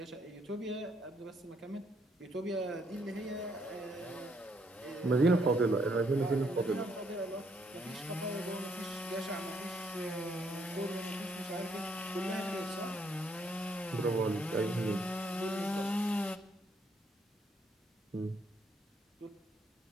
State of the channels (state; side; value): normal; both; correlation 0.71